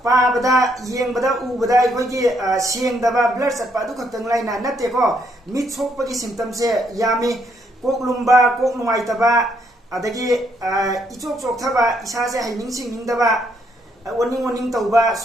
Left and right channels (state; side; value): normal; both; correlation 0.73